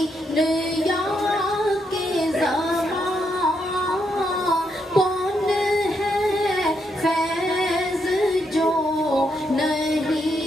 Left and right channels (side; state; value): both; normal; correlation 0.79